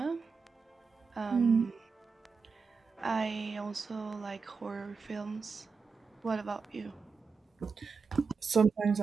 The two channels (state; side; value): quieter; left; 5.1 dB